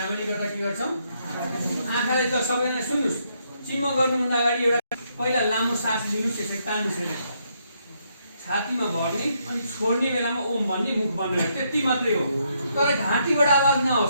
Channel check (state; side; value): inverted; both; correlation -0.75